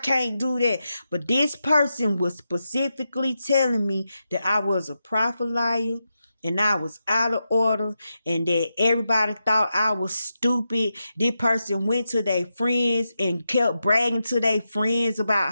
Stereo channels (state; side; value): inverted; both; correlation -0.88